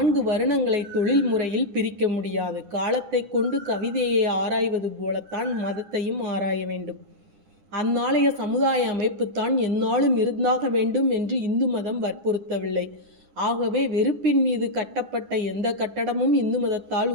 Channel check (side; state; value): left; late; 9.9 ms